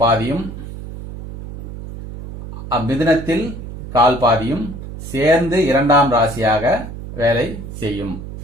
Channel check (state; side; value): noise; right; hum, 10 dB below the sound